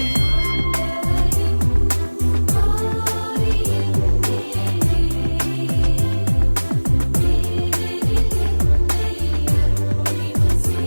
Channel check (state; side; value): inverted; both; correlation -1.00